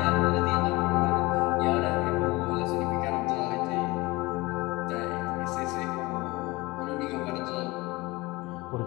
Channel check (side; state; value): right; quieter; 22.2 dB